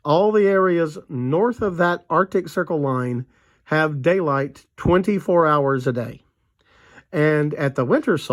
all the areas north of that Arctic Circle line have daylight 24 hours a day. And at the winter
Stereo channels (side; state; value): both; identical; correlation 1.00